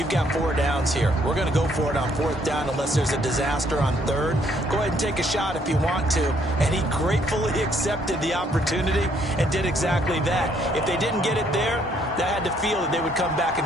got 4 downs here. We're going to go for it on 4th down unless there's a disaster on 3rd. Go ahead and take a shot if you want to. And he gratefully accepted the opportunity and did exactly that. If they didn't get it there, that had the feel that they would come back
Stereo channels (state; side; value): normal; both; correlation 0.67